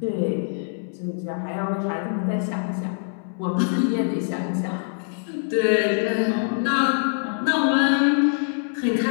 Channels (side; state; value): right; silent; 63 dB below the other